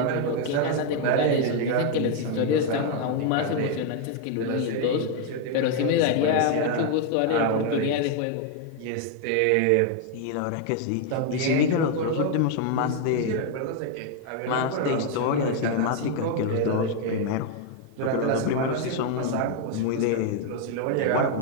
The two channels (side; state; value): both; different; correlation 0.00